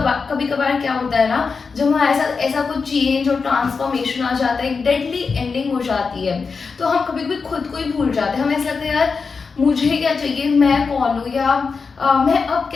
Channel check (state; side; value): quieter; right; 5.0 dB